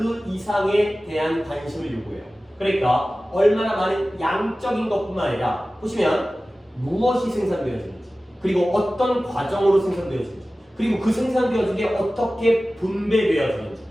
이상에 대한 관심을 요구해요. 그러니까 얼마나 많은 양적인 것뿐만 아니라 보시면 무엇이 생산되어지는지, 그리고 어떤 과정으로 생산되어지는지, 그리고 그 생산되어진 게 어떻게 분배되어지는지.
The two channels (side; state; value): both; normal; correlation 0.96